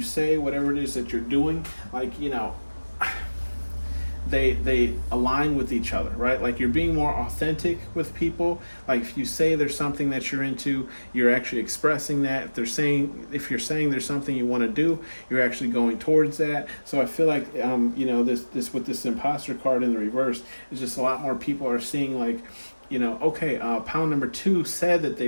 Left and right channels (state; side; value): inverted; both; correlation -1.00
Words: say, whatever it is that you're doing, like, they align with each other, right? Like you're being more authentic with people. Like if you say there's something that you're into, you're actually expressing that. If you're saying there's something you want to do, you're actually going towards that. So I feel like this with this imposter card in the reverse is just a lot more people are seeing like, okay, pound number 2 said that